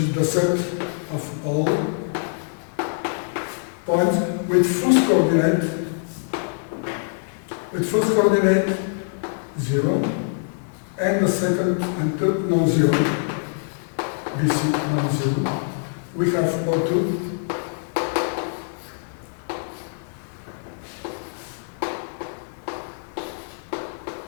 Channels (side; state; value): right; silent; 62 dB below the other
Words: the set of all points with first coordinate 0, and the second and third non-zero, BC non-zero. We have O2,